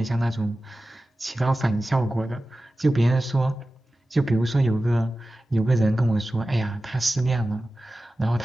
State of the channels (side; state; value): both; normal; correlation 0.95